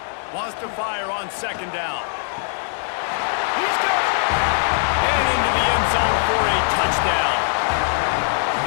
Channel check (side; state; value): right; silent; digital silence